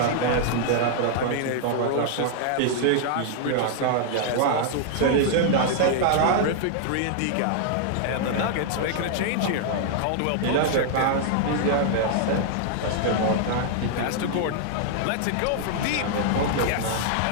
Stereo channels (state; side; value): different; both; correlation -0.01